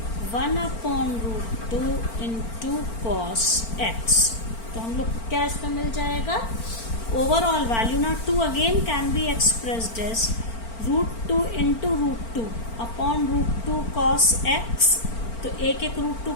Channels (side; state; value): right; late; 4.4 ms